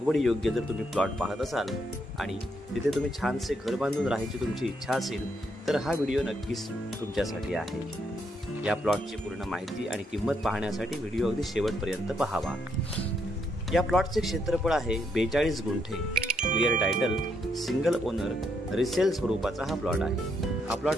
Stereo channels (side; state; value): both; normal; correlation 0.76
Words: योग्य जर तुम्ही प्लॉट पाहत असाल आणि तिथे तुम्ही छानसे घर बांधून राहायची तुमची इच्छा असेल तर हा व्हिडिओ नक्कीच तुमच्यासाठी आहे. या प्लॉटची पूर्ण माहिती आणि किंमत पाहण्यासाठी व्हिडिओ अगदी शेवटपर्यंत पाहावा. या प्लॉटचे क्षेत्रफळ आहे 42 गुंठे. Clear title, single owner, resale स्वरूपाचा हा प्लॉट आहे. हा